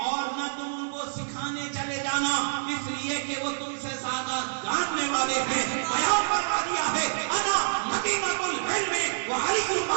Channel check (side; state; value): left; silent; digital silence